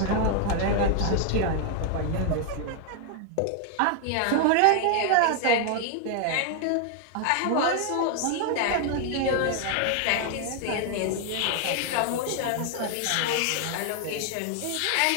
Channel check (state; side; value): different; both; correlation 0.00